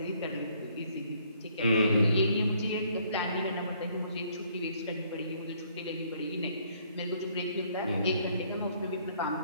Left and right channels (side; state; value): both; inverted; correlation -0.65